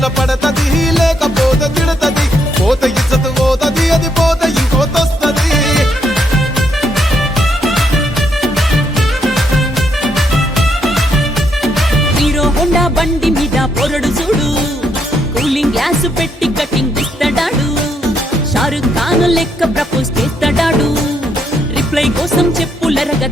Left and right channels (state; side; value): normal; both; correlation 0.76